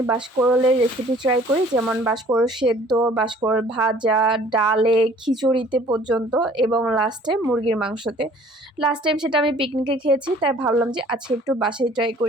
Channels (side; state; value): both; normal; correlation 0.54